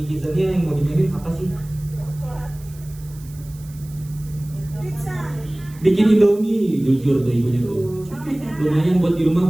di Kidzania yang mau dimainin apa sih? Bikin Indomie, jujur tuh ibunya tuh. Lumayan buat di rumah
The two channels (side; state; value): right; noise; hiss, 23 dB below the sound